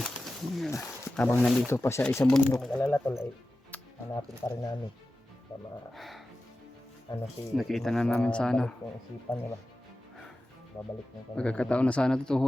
Habang nandito pa siya isang bundok. Mag-alala tol ay hanapin pa rin namin. Sama Nakita na namin sana. Babalik yung isipan niya ba? Babalik yung kanyang Magkakataon na sana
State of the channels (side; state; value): both; normal; correlation 0.94